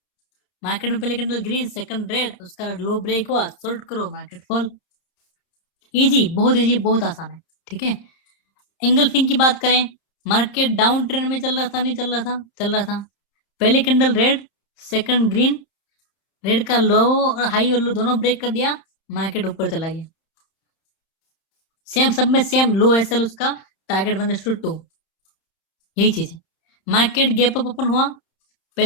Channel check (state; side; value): late; right; 30 ms